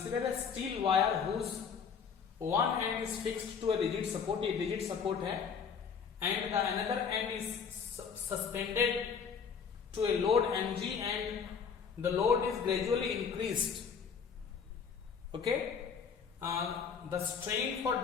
a steel wire whose one end is fixed to a rigid support, ये रिजिड सपोर्ट है, and the another end is suspended to a load mg and the load is gradually increased, okay. The strain for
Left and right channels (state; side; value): quieter; right; 6.4 dB